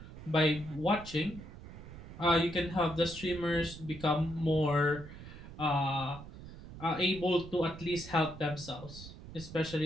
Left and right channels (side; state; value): right; noise; rumble, 14 dB below the sound